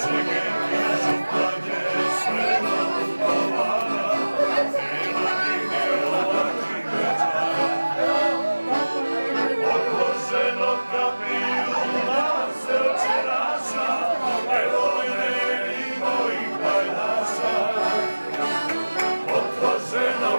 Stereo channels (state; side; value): inverted; both; correlation -1.00